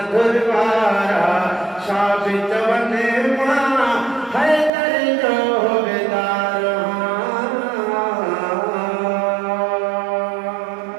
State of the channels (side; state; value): left; drops out; at 4.7 s